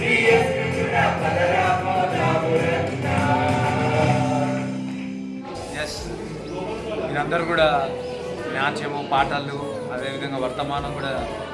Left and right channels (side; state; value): both; identical; correlation 1.00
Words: యేసుని చూడ పదరా పోదాము రండా. ఎస్, మీరందరూ కూడా నాట్యము పాటలు అదేవిధంగా వర్తమానం కూడా